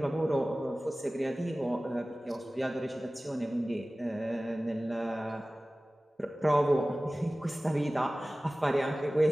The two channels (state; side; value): normal; both; correlation 0.97